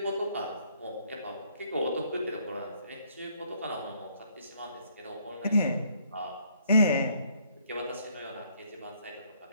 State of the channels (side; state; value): both; inverted; correlation -0.66